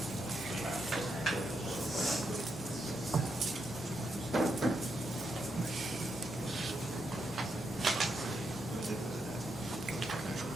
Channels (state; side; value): normal; both; correlation 0.82